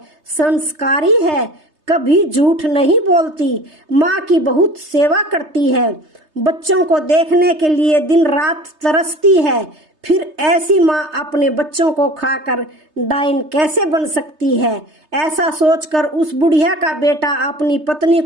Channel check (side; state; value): left; late; 3.3 ms